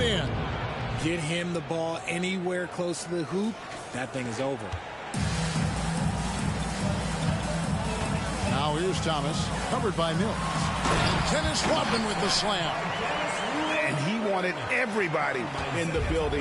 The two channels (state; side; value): identical; both; correlation 1.00